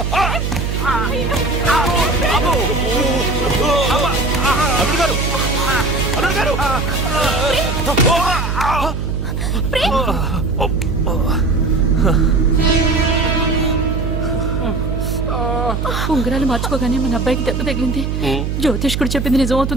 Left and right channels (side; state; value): right; noise; hum, 2 dB below the sound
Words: అల్లుడు గారు! అల్లుడు గారు! ఉంగరాలు మార్చుకోగానే మన అబ్బాయికి దెబ్బ తగిలింది. జ్యోతిష్కుడు చెప్పింది